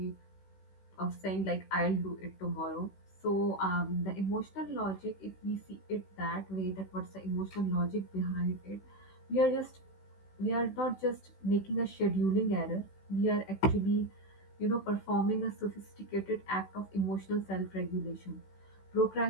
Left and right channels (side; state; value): right; late; 16 ms